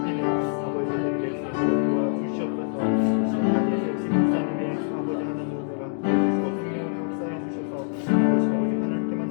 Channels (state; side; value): silent; right; digital silence